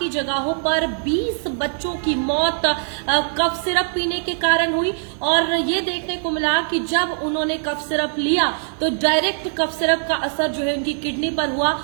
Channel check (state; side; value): silent; left; digital silence